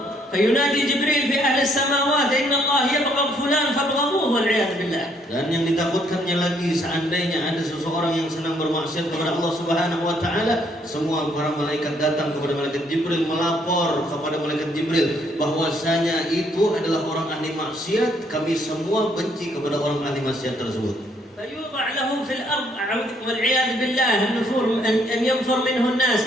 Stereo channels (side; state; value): both; normal; correlation 0.68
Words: فينادي جبريل في أهل السماوات إن الله يبغض فلان فابغضوه والعياذ بالله. Dan yang ditakutkannya lagi, seandainya ada seseorang yang senang bermaksiat kepada Allah Subhanahu wa taala, semua para malaikat datang kepada malaikat Jibril melapor kepada malaikat Jibril bahwasanya itu adalah orang ahli maksiat, kami semua benci kepada orang ahli maksiat tersebut. فيوضع له في الأرض والعياذ بالله النفور أن ينفر منه الناس،